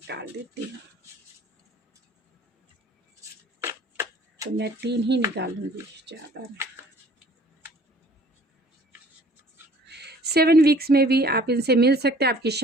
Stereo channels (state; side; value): normal; both; correlation 0.53